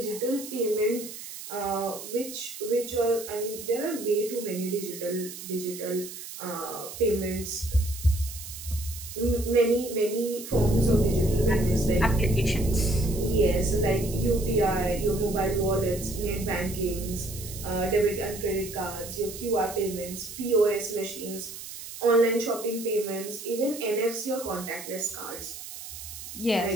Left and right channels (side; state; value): right; noise; hiss, 11 dB below the sound